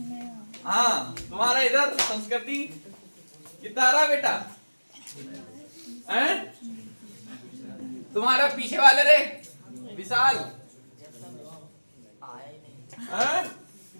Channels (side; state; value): both; inverted; correlation -1.00